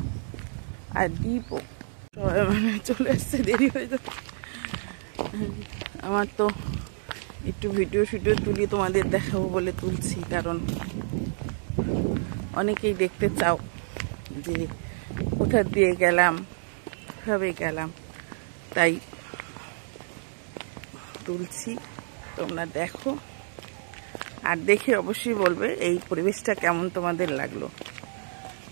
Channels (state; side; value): silent; left; digital silence